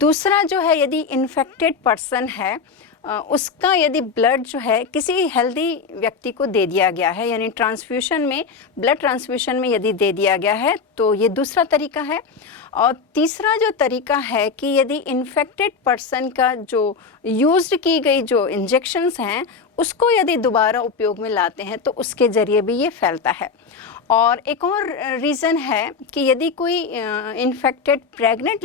जो है यदि इन्फेक्टेड पर्सन है उसका यदि ब्लड जो है किसी हेल्दी व्यक्ति को दे दिया गया है, यानी ट्रांसफ्यूशन में, ब्लड ट्रांसफ्यूशन में यदि दे दिया गया है, तो ये दूसरा तरीका है। और तीसरा जो तरीका है कि यदि इन्फेक्टेड पर्सन का जो यूज्ड की गई जो इंजेक्शंस हैं उसको यदि दोबारा उपयोग में लाते हैं तो उसके ज़रिए भी ये फैलता है। और एक और रीज़न है कि यदि कोई इन्फेक्टेड प्रेग्नेंट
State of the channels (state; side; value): quieter; right; 5.2 dB